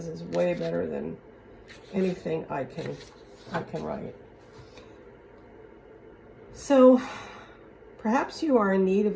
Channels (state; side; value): identical; both; correlation 1.00